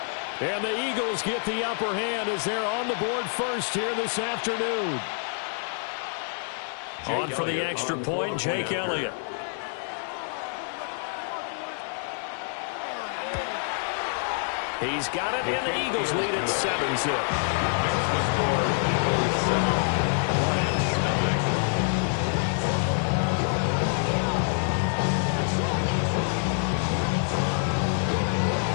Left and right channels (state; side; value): silent; right; 60 dB below the other